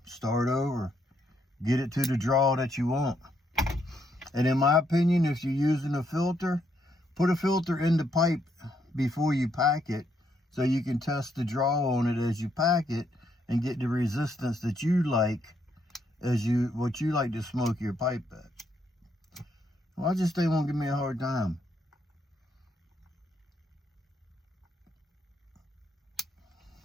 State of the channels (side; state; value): both; normal; correlation 0.75